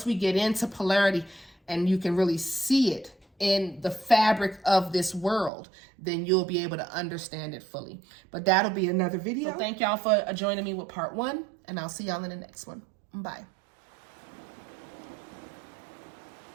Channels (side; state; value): left; drops out; at 5.5 s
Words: we get into polarity and you can really see it in the fabric of this world, then you'll be able to understand it fully. But that'll be another video. So thank y'all for joining me with part 1, and I'll see y'all in the next one. Bye.